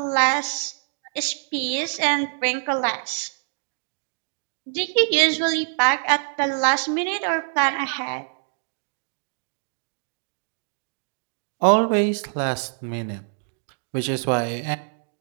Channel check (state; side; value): silent; left; digital silence